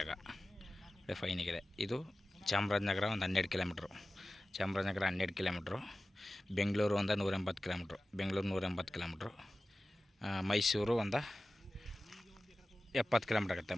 ಫೈನಿಗಿದೆ. ಇದು ಚಾಮರಾಜನಗರ ಒಂದು 12 ಕಿಲೋಮೀಟ್ರು. ಚಾಮರಾಜನಗರ 12 ಕಿಲೋಮೀಟ್ರು. ಬೆಂಗಳೂರು ಒಂದು 180 ಕಿಲೋಮೀಟ್ರು. ಬೆಂಗಳೂರು 180 ಕಿಲೋಮೀಟ್ರು. ಮೈಸೂರು ಒಂದು 70 ಕಿಲೋಮೀಟ್ರ್ ಆಗುತ್ತೆ.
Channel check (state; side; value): normal; both; correlation 0.96